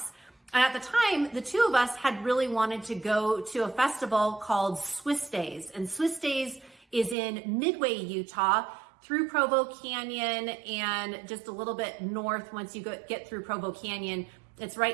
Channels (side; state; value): left; drops out; at 7.2 s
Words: And at the time, the two of us had really wanted to go to a festival called Swiss Days. And Swiss Days is in Midway, Utah, through Provo Canyon and just a little bit north once you get through Provo Canyon. It's